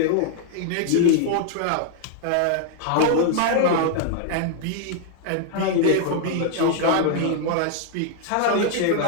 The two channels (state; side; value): different; both; correlation 0.00